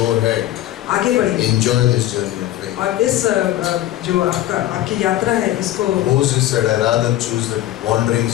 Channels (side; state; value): right; quieter; 14.3 dB